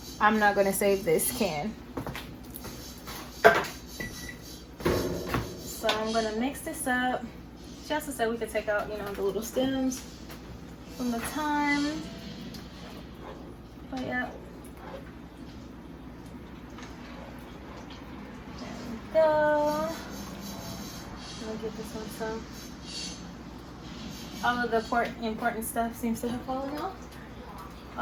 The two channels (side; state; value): both; identical; correlation 1.00